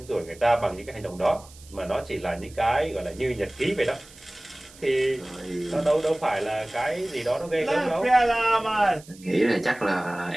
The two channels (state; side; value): noise; right; hiss, 22 dB below the sound